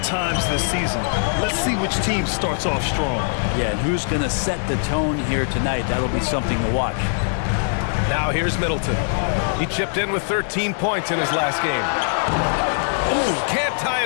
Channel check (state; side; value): silent; right; 58 dB below the other